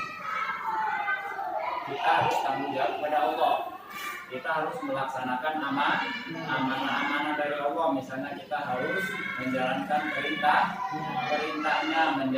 Kita harus tanggung jawab kepada Allah. Kita harus melaksanakan amanah dari Allah. Misalnya kita harus menjalankan perintahnya,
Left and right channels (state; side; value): identical; both; correlation 1.00